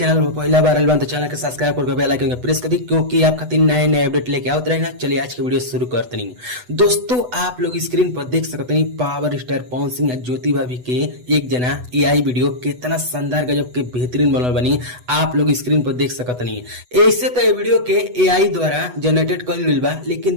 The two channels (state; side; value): late; left; 8.1 ms